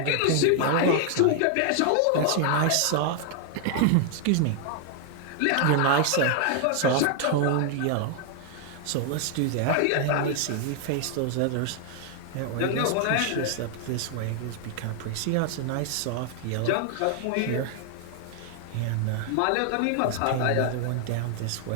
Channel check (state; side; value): different; both; correlation 0.00